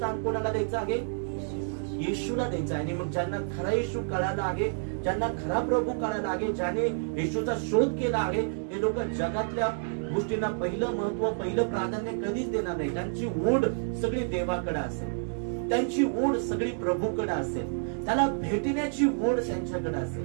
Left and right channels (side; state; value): left; silent; digital silence